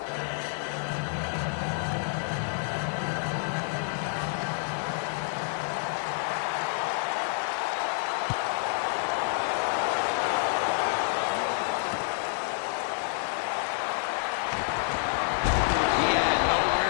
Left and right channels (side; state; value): right; silent; 59 dB below the other